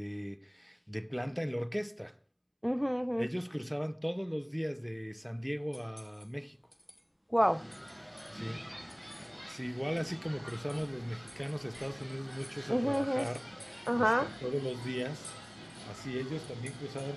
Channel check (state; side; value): identical; both; correlation 1.00